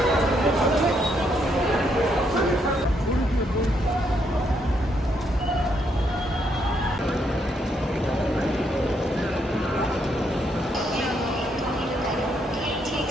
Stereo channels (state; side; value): normal; both; correlation 0.75